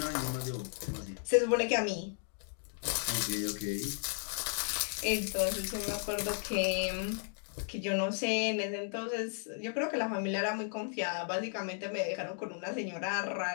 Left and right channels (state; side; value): silent; right; 55 dB below the other